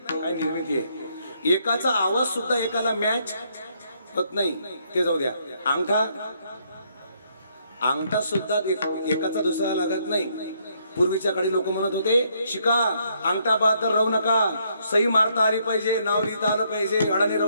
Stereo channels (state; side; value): inverted; both; correlation -0.71